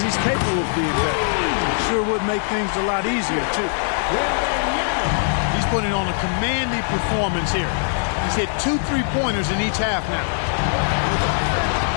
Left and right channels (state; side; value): silent; right; digital silence